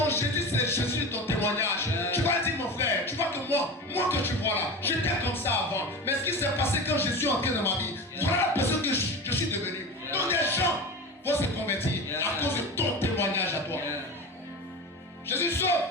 Jésus, c'est le Jésus de ton témoignage. Tu vas dire, mon frère, tu vois que moi que tu vois là, j'étais comme ça avant. Mais ce qui s'est passé quand Jésus est entré dans ma vie, voilà la personne que je suis devenu. Donc les gens vont se convertir à cause de ton témoignage à toi. Jésus sauve,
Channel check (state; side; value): normal; both; correlation 0.28